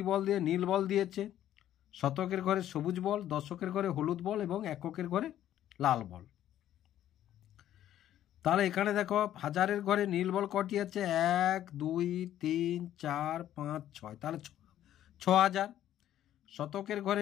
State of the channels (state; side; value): quieter; right; 11.9 dB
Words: বল দিয়ে, নীল বল দিয়েছে। শতকের ঘরে সবুজ বল, দশকের ঘরে হলুদ বল এবং এককের ঘরে লাল বল। তাহলে এখানে দেখো হাজারের ঘরে নীল বল কটি আছে, 1 2 3 4 5 6, তাহলে 6000। শতকের